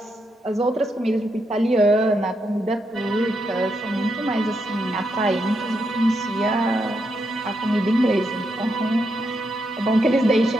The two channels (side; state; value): both; normal; correlation 0.81